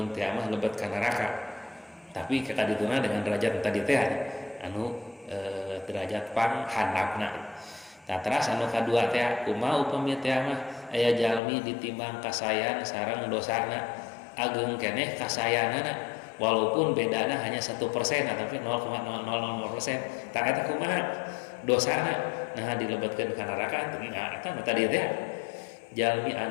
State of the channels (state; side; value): drops out; right; at 11.4 s